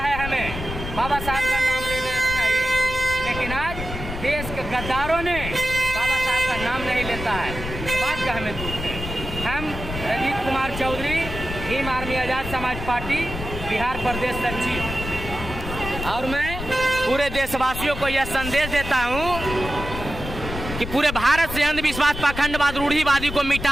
हमें, बाबा साहब का नाम लेना चाहिए। लेकिन आज देश के गद्दारों ने बाबा साहब का नाम नहीं लेता है, इस बात का हमें दुख है। हम रंजीत कुमार चौधरी, भीम आर्मी आज़ाद समाज पार्टी बिहार प्रदेश सचिव, और मैं पूरे देशवासियों को यह संदेश देता हूँ कि पूरे भारत से अंधविश्वास, पाखंडवाद, रूढ़िवादी को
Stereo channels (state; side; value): noise; left; rumble, 8 dB below the sound